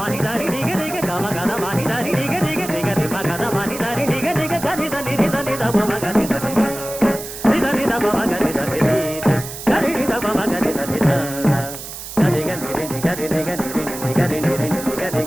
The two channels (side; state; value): right; noise; hiss, 10 dB below the sound